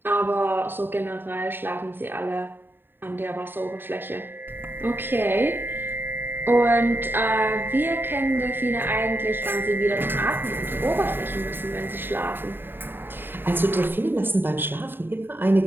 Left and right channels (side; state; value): left; late; 0.097 ms